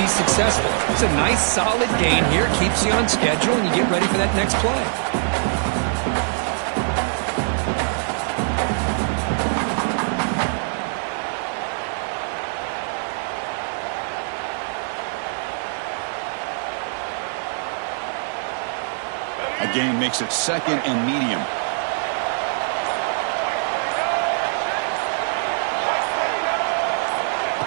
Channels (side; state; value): left; silent; 58 dB below the other